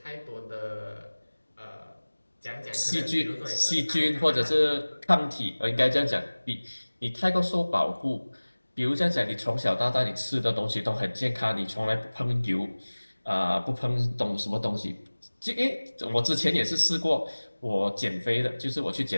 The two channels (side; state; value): both; inverted; correlation -1.00